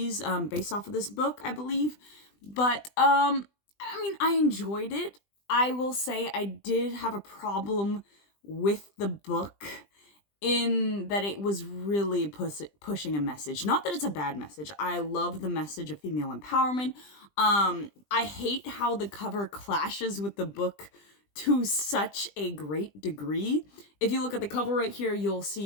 based off of this book, I believe. But, I enjoyed it. I will say I did have a problem with the book in that it was really pushing a message. Not that it's a bad message. I love the message of female empowerment. I hate how the cover clashes with the book to such a great degree. If you look at the cover right here, you'll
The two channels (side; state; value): right; late; 20 ms